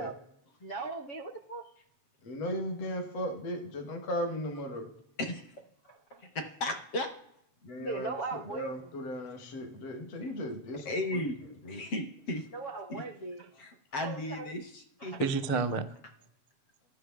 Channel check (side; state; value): right; late; 7.5 ms